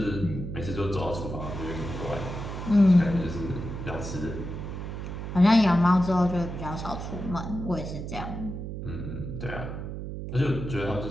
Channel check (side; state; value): right; noise; hum, 6 dB below the sound